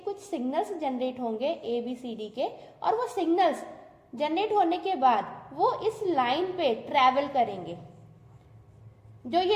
सिग्नल्स जनरेट होंगे ABCD के, और वो सिग्नल्स जनरेट होने के बाद वो इस लाइन पे ट्रैवल करेंगे। जो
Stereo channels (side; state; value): both; identical; correlation 1.00